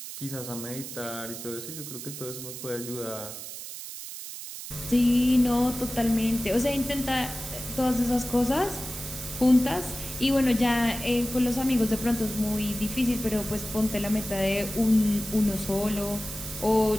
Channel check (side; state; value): right; noise; hiss, 10 dB below the sound